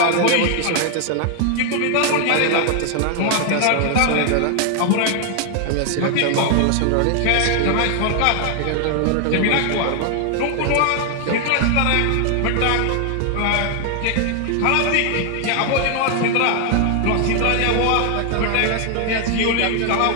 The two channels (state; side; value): different; both; correlation 0.00